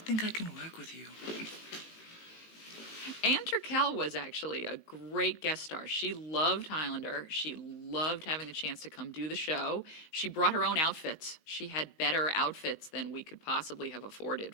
I can work with you. Anne Turkel was actually a great guest star. She loved Highlander. She loved having the chance to come do the show. She brought her own outfits. She had better outfits than we could possibly have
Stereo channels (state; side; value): late; right; 18 ms